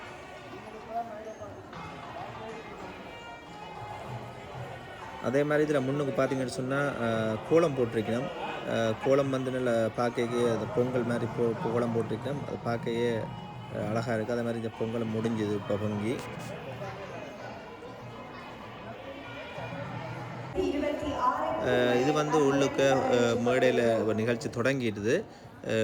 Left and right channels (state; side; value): identical; both; correlation 1.00